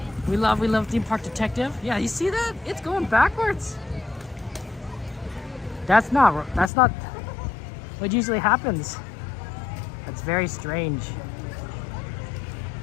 We love Theme Park Detective. Yeah, you see that? It's going backwards. That's not what usually happens. That's very strange.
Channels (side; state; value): right; drops out; at 6.7 s